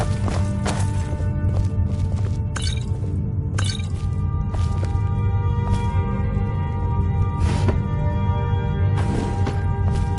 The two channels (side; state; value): both; identical; correlation 1.00